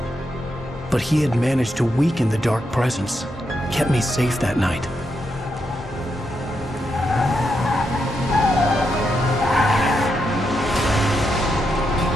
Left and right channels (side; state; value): both; normal; correlation 0.83